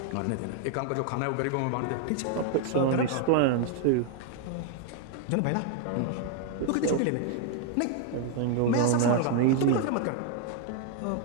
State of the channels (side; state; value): both; different; correlation 0.00